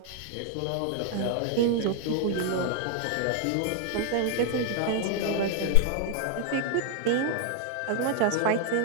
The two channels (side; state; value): both; different; correlation 0.00